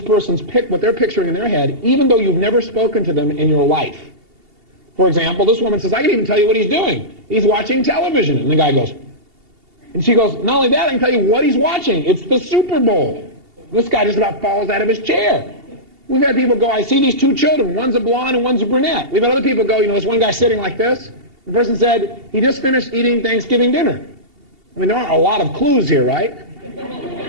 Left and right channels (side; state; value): left; late; 2.8 ms